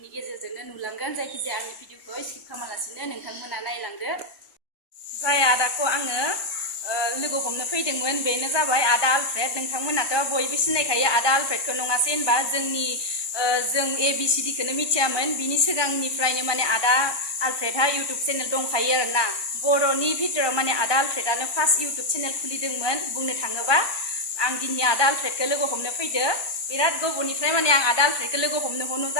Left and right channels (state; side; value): late; right; 1.2 ms